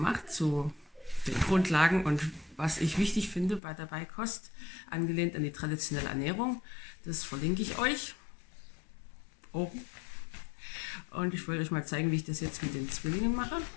zu den Grundlagen und was ich wichtig finde bei der Beikost, angelehnt an die traditionelle Ernährung. Das verlinke ich euch oben. Und ich wollte euch mal zeigen, wie ich das jetzt mit den Zwillingen mache.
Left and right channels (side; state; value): right; drops out; at 3.6 s